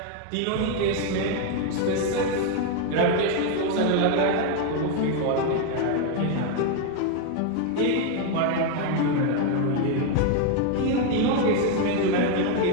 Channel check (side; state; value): both; different; correlation 0.01